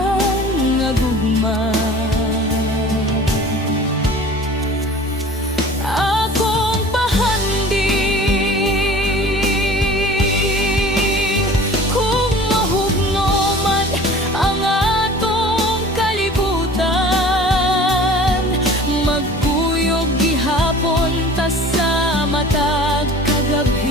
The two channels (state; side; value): normal; both; correlation 0.44